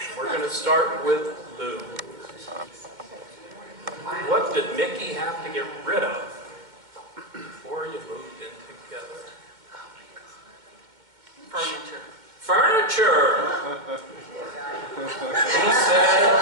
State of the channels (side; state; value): left; late; 2.1 ms